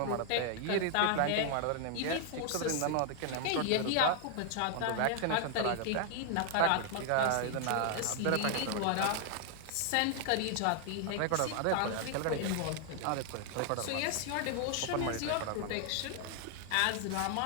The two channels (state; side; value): different; both; correlation 0.00